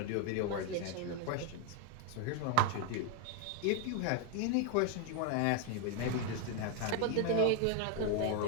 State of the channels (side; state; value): both; different; correlation 0.01